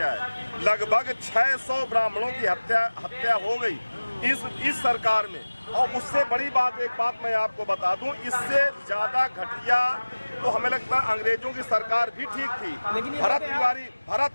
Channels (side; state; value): both; inverted; correlation -1.00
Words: है, लगभग 600 ब्राह्मणों की हत्या हो गई इस सरकार में। और उससे बड़ी बात, एक बात मैं आपको बता दूं, इससे ज्यादा घटिया तो हमें लगता है अंग्रेजों की सरकार भी ठीक थी। भरत